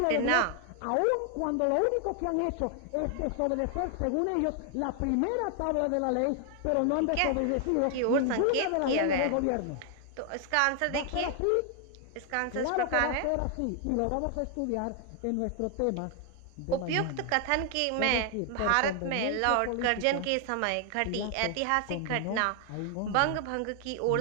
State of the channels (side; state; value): both; different; correlation 0.00